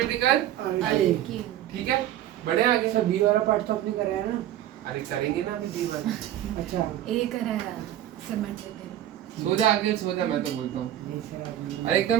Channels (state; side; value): quieter; left; 12.3 dB